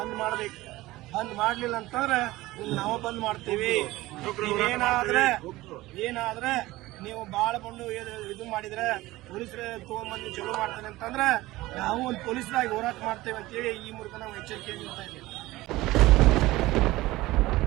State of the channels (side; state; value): left; quieter; 18.3 dB